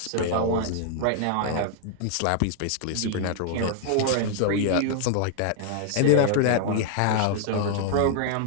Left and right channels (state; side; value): different; both; correlation 0.00